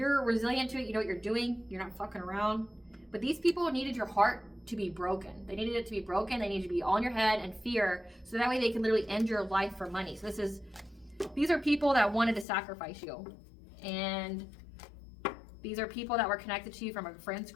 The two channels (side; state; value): right; drops out; at 12.5 s